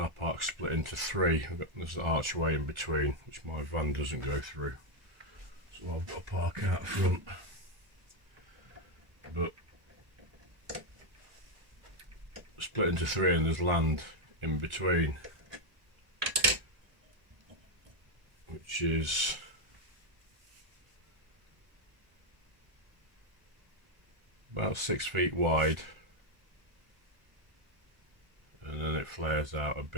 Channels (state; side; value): late; left; 1.3 ms